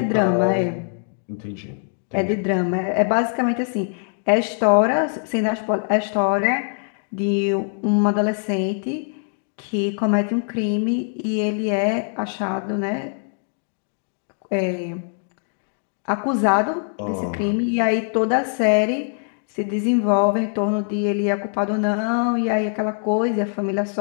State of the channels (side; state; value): right; silent; 64 dB below the other